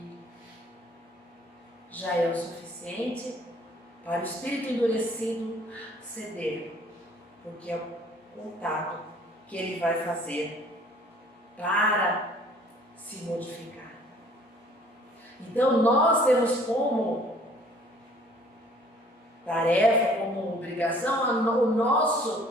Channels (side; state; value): both; normal; correlation 0.55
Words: já é o suficiente para o espírito endurecido ceder, porque é o contato que ele vai fazer para se modificar. Então nós temos como tarefa, como obrigação, o